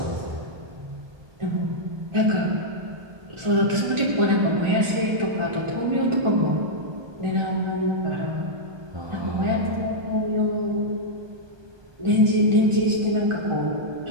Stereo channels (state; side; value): late; left; 1.3 ms